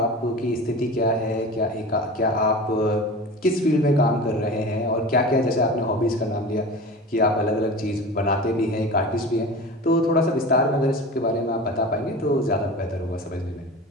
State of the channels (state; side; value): normal; both; correlation 0.33